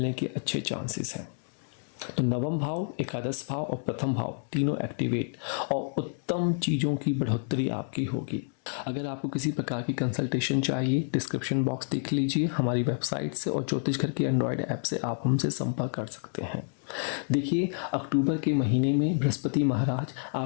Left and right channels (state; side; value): silent; right; 58 dB below the other